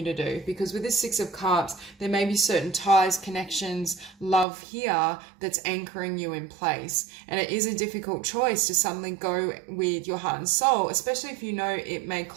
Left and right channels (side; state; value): left; drops out; at 4.5 s